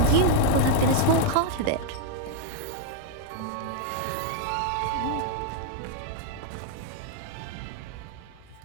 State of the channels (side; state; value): both; different; correlation 0.00